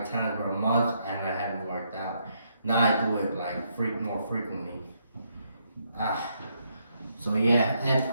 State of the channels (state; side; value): inverted; both; correlation -0.75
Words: times where a month and I haven't worked out. Now I do it like more frequently. So yeah, and